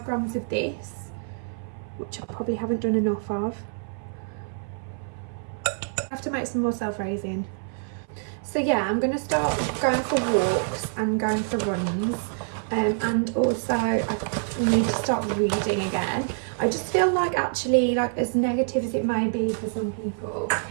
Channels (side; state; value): left; silent; 57 dB below the other